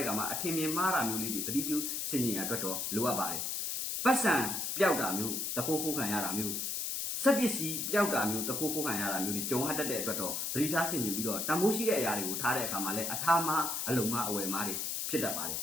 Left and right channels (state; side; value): noise; left; hiss, 2 dB below the sound